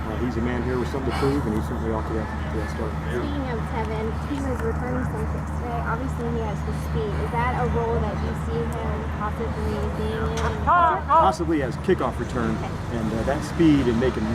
He's a man here with something to prove, and he's certainly off to that start. Speaking of Tevin, he was returning some kicks today. Obviously, he has the speed. Is that a role that you see him possibly being in? Possibly as kickoff return, and that speed and making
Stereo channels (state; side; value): identical; both; correlation 1.00